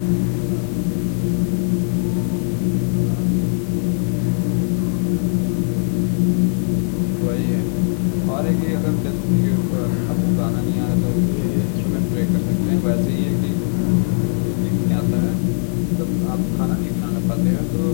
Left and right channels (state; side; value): silent; right; 66 dB below the other